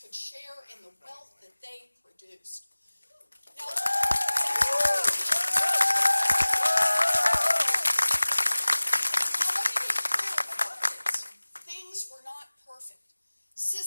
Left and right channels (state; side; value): inverted; both; correlation -1.00